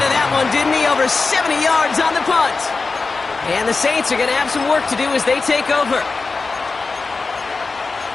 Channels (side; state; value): right; quieter; 4.1 dB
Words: of that one, didn't he? Over 70 yards on the punt. And the Saints are going to have some work to do as they take over.